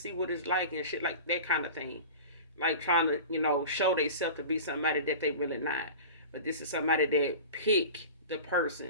see what it's like and shit like that kind of thing. Like, trying to, show themselves to be somebody that they really not. But this is somebody that pick the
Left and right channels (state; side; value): inverted; both; correlation -0.34